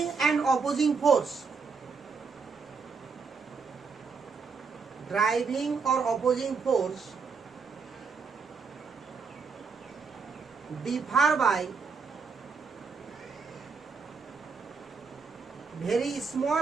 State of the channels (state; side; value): quieter; left; 5.1 dB